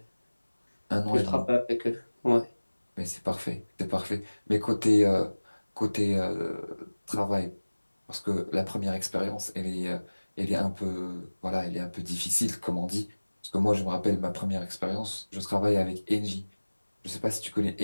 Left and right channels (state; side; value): inverted; both; correlation -1.00